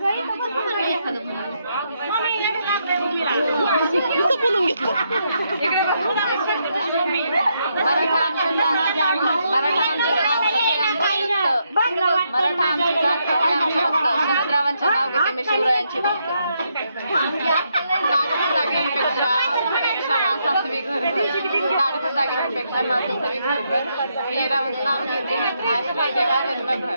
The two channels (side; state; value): both; inverted; correlation -0.78